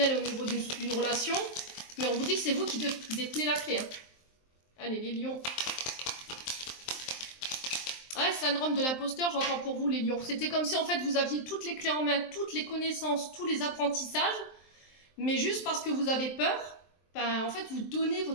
et au niveau d'une relation, mais on vous dit que c'est vous qui détenez la clé. Hein. Allez, les lions. Ouais, syndrome de l'imposteur, j'entends pour vous, les lions. C'était comme si, en fait, vous aviez toutes les clés en main, toutes les connaissances, tous les apprentissages, mais juste parce que vous avez peur, ben, en fait, vous donnez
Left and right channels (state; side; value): late; right; 23 ms